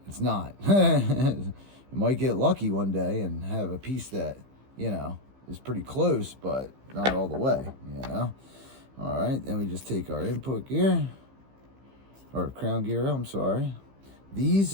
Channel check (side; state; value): left; late; 15 ms